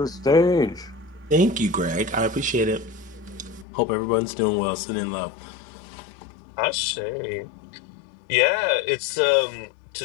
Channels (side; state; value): right; drops out; at 3.7 s